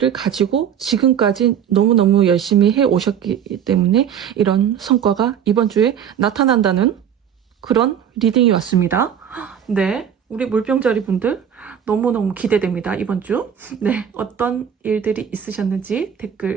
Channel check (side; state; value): left; quieter; 8.7 dB